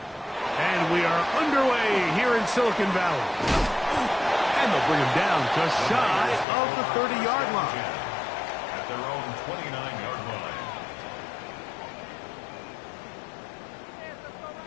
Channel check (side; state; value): right; drops out; at 6.5 s